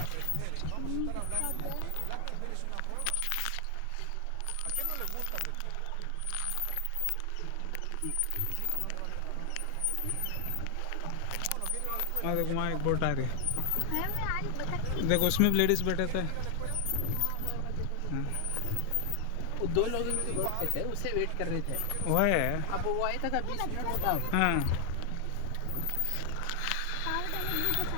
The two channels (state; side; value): different; both; correlation 0.00